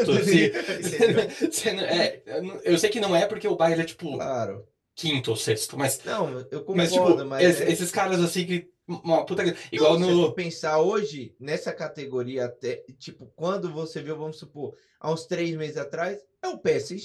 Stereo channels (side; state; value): both; identical; correlation 1.00